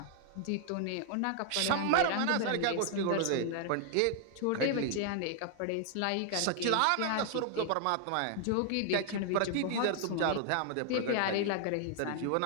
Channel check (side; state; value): both; different; correlation 0.00